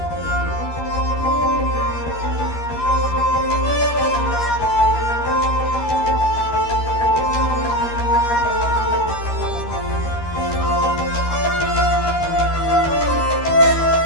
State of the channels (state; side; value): late; right; 13 ms